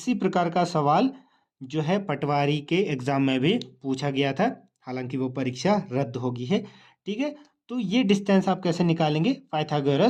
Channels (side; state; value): both; identical; correlation 1.00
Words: प्रकार का सवाल जो है पटवारी के एग्जाम में भी पूछा गया था, हालांकि वो परीक्षा रद्द होगी है, ठीक है। तो ये डिस्टेंस आप कैसे निकालेंगे?